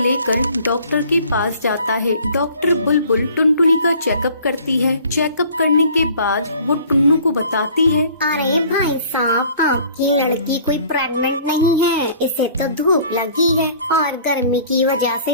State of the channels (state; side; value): inverted; both; correlation -0.51